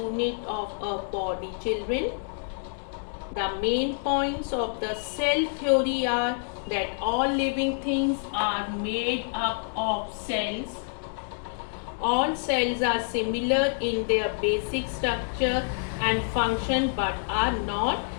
of a body, children. The main points of the cell theory are that all living things are made up of cells. All cells are similar in their basic structure and function but are not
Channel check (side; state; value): right; silent; digital silence